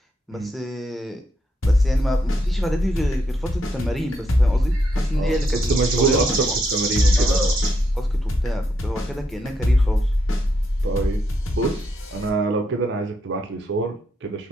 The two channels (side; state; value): both; normal; correlation 0.78